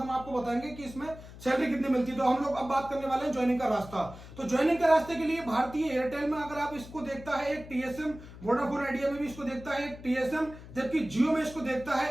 आपको बताएंगे कि इसमें सैलरी कितनी मिलती है। तो हम लोग अब बात करने वाले हैं ज्वाइनिंग का रास्ता। तो ज्वाइनिंग के रास्ते के लिए भारतीय एयरटेल में अगर आप इसको देखता है एक टीएसएम, वोडाफोन आइडिया में भी इसको देखता है एक टीएसएम, जबकि जियो में इसको देखता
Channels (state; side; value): noise; left; hum, 16 dB below the sound